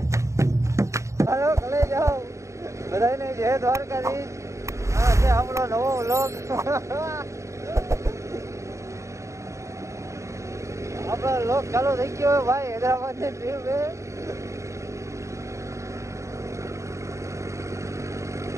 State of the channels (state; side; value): late; left; 0.14 ms